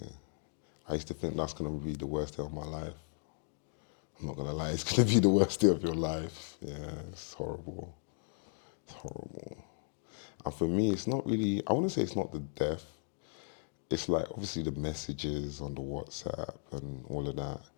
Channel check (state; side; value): silent; right; digital silence